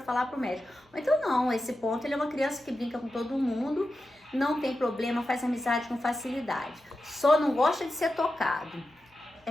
falar para o médico. Ou então não, esse ponto, ele é uma criança que brinca com todo mundo, não tem problema, faz amizade com facilidade. Só não gosta de ser tocado.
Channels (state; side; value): normal; both; correlation 0.91